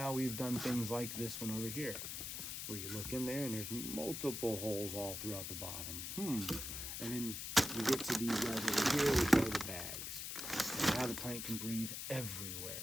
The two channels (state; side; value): noise; left; hiss, 5 dB below the sound